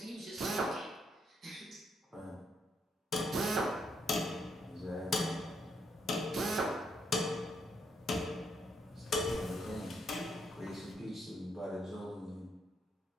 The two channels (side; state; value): both; normal; correlation 0.76